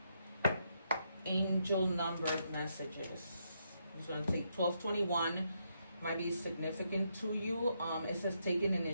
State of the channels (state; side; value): inverted; both; correlation -0.78